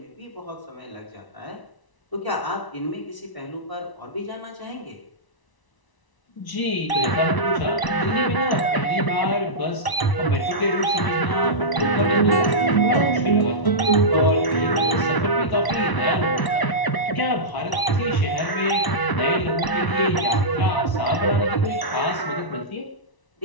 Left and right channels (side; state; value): right; late; 1.0 ms